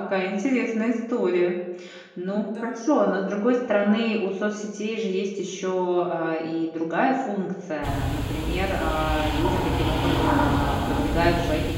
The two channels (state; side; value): identical; both; correlation 1.00